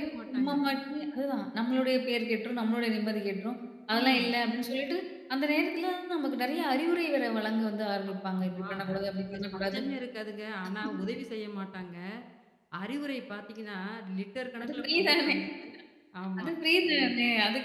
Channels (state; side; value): identical; both; correlation 1.00